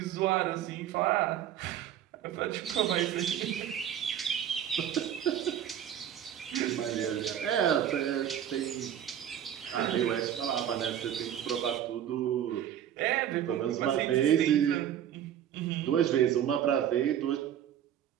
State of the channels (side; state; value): left; quieter; 10.3 dB